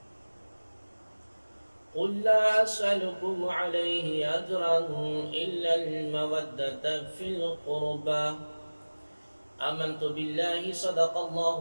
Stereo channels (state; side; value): inverted; both; correlation -1.00